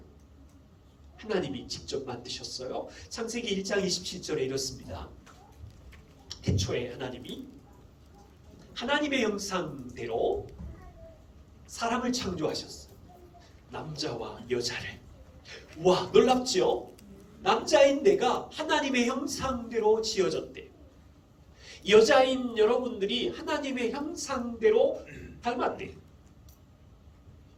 하나님이 직접 만드셨어요. 창세기 1장 27절에 이렇습니다. 태초에 하나님의 형상대로 사람을 창조하셨어요. 남자와 여자를. 와, 놀랍죠? 남자인 내가 하나님의 형상대로 지어졌대요. 여자인 여러분들이 하나님의 형상대로 닮았대요.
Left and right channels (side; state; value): both; identical; correlation 1.00